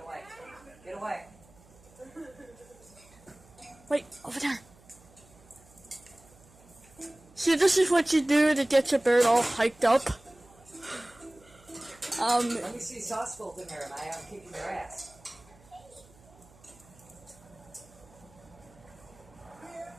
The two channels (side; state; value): right; noise; hum, 26 dB below the sound